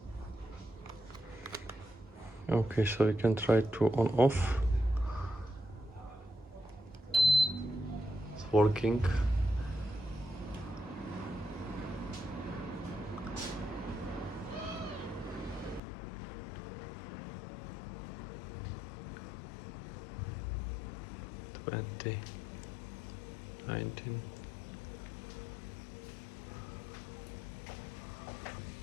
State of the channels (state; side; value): drops out; right; at 15.8 s